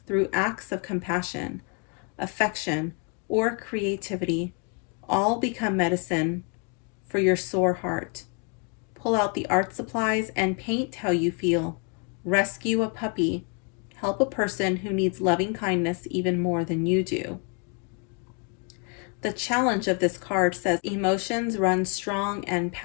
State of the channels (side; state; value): right; quieter; 37.9 dB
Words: through acts of compassion, affection, or creativity. All become medicine for your sore heart. Pull out the art supplies and paint how you feel. Rescue a puppy. Help a person who needs loving kindness even more than you do. The challenge of this card says emotions run strong and